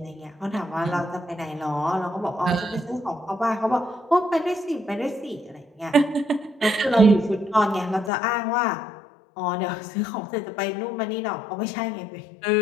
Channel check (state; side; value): drops out; right; at 8.1 s